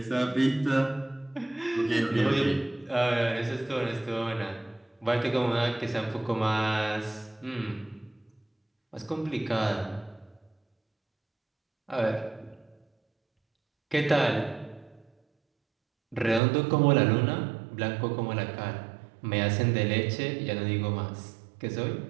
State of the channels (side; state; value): left; drops out; at 16.4 s